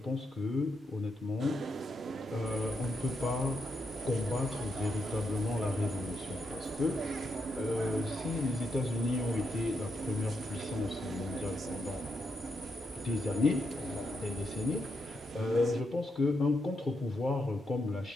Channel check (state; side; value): normal; both; correlation 0.82